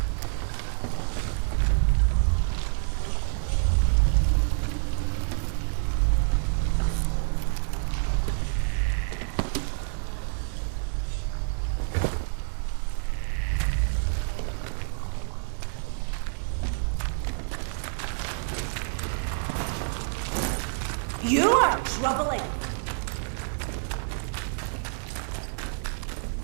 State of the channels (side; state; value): left; silent; digital silence